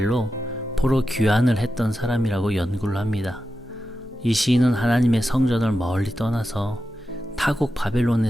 포로 귀환을 했던 사람이라고 연구를 합니다. 이 시인은 하나님의 성전을 멀리 떠나서 타국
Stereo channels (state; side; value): normal; both; correlation 0.90